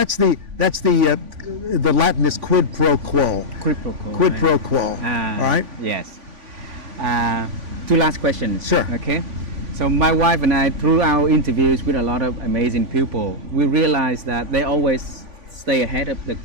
the Latin is quid pro quo. Quid pro quo. Quid pro quo. All right. Yes. Two last questions. Sure. Okay. So my wife and I, through our interviews with a lot of amazing people, we realized that they always stay ahead of the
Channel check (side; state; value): left; late; 3.5 ms